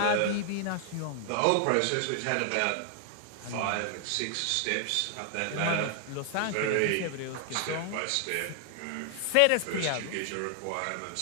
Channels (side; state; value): both; different; correlation 0.00